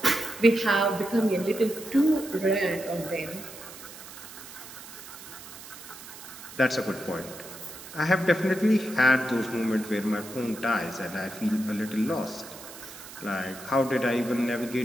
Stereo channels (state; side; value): noise; right; hiss, 15 dB below the sound